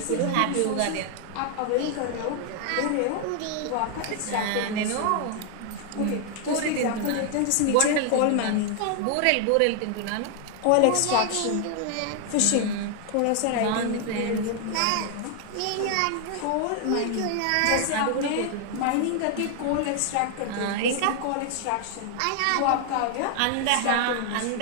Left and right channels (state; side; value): different; both; correlation 0.00